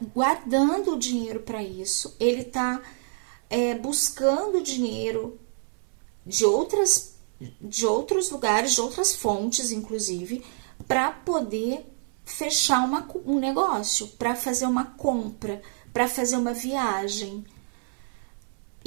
guardando o dinheiro para isso, ele tá buscando dinheiro de outros lugares, de outras fontes, inclusive, para poder fechar um negócio, para fazer uma compra, para fazer uma viagem.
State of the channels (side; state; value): left; silent; digital silence